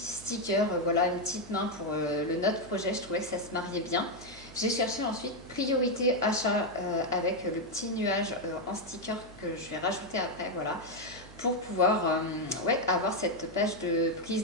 voilà, une petite main pour le note projet, je trouvais que ça se mariait bien. J'ai cherché ensuite priorité achat avec le petit nuage en sticker que je vais rajouter après, voilà, pour pouvoir avoir cette page de prise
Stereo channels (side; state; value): right; noise; hum, 19 dB below the sound